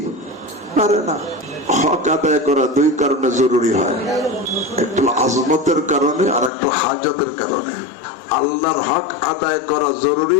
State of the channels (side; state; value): right; drops out; at 6.5 s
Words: পারে না। হক আদায় করা দুই কারণে জরুরি হয়, একটু আজমতের কারণে আর একটু হাজতের কারণে। আল্লাহর হক আদায় করা জরুরি